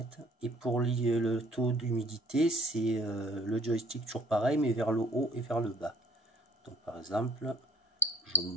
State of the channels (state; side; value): normal; both; correlation 0.56